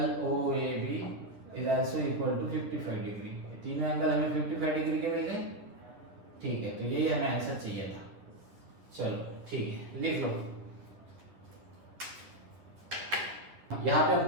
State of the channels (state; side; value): late; left; 10 ms